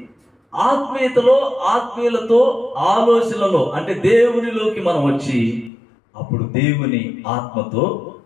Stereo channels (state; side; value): drops out; right; at 5.7 s